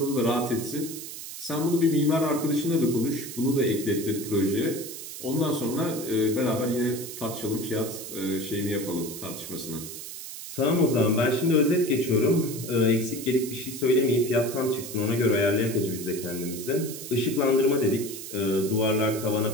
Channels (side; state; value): right; noise; hiss, 10 dB below the sound